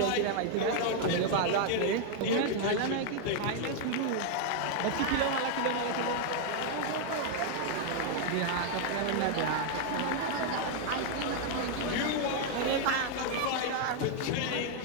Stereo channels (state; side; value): different; both; correlation 0.00